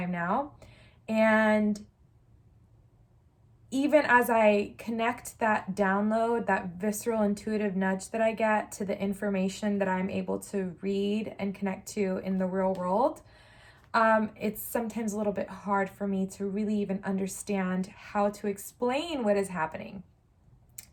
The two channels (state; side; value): identical; both; correlation 1.00